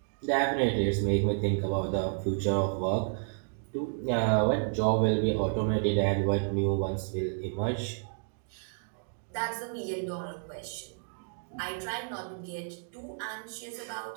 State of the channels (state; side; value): silent; left; digital silence